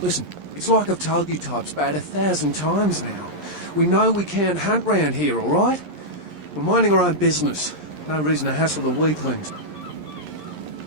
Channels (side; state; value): left; late; 11 ms